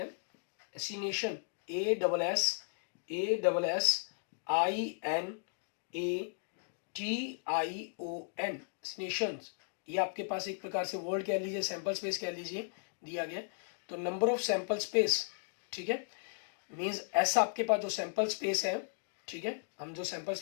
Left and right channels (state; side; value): silent; right; digital silence